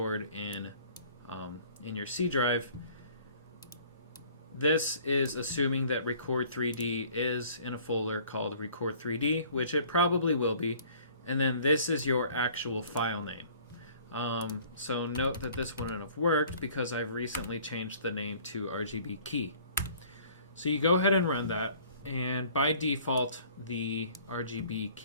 in your C drive. This is assuming that Record3D is in a folder called Record3D, which it probably will be, and then this is your actual file name. So note that this wouldn't have worked because I've recently changed the name to rgbkey. So you go ahead and run that, and by default the RGB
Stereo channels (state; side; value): inverted; both; correlation -0.54